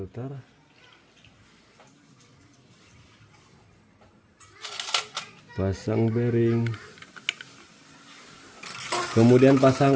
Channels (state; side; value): identical; both; correlation 1.00